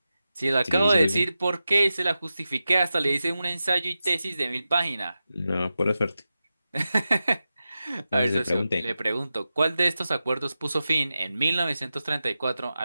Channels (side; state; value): both; inverted; correlation -0.92